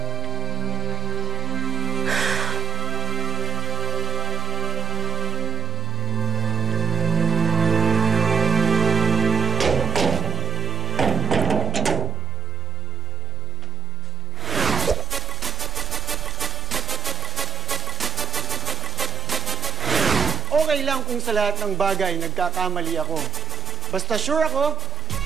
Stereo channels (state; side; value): quieter; left; 4.1 dB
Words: Okay lang kung sa lahat ng bagay nagkakamali ako. Basta sure ako,